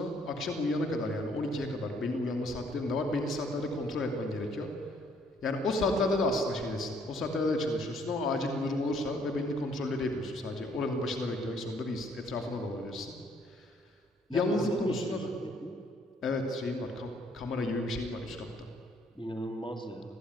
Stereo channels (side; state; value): both; normal; correlation 0.65